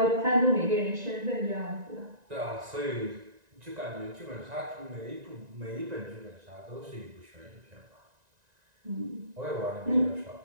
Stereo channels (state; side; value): late; left; 1.9 ms